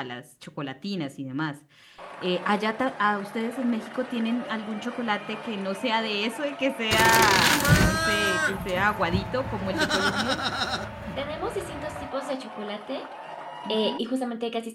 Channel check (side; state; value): both; identical; correlation 1.00